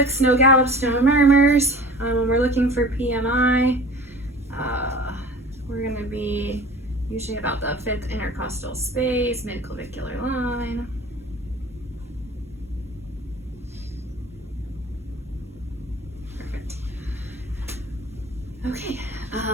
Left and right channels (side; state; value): both; normal; correlation 0.42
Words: no gallops, no murmurs. We're looking for PMI. We're going to be usually about the 5th intercostal space, midclavicular line. Perfect. Okay,